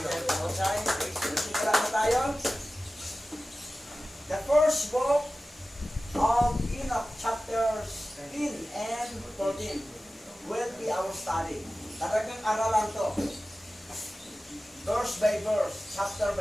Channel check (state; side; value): normal; both; correlation 0.95